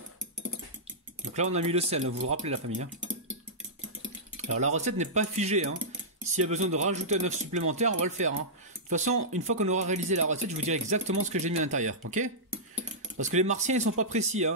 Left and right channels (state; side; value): normal; both; correlation -0.13